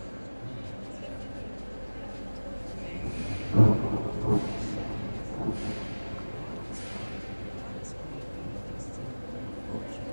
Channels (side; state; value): both; inverted; correlation -1.00